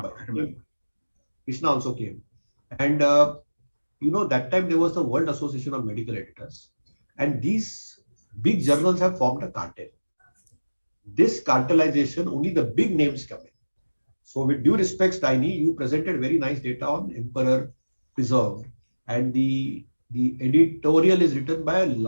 Krishna also came. And that time there was the World Association of Medical Editors. And these big journals have formed a cartel. This cartelization, only the big names come in. So with due respect, Tiny, you presented very nice data on Emperor Preserved, and the editorial is written by a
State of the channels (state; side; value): inverted; both; correlation -1.00